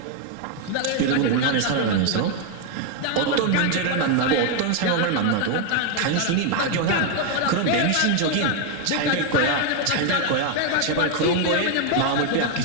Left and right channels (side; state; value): both; different; correlation 0.01